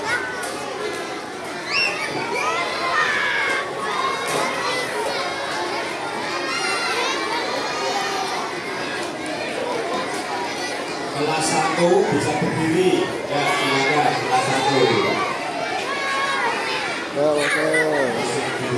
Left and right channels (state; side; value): identical; both; correlation 1.00